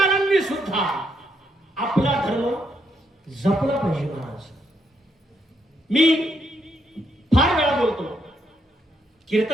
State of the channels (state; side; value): normal; both; correlation 0.77